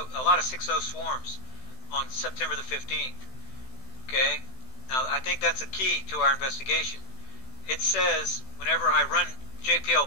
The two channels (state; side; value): late; right; 16 ms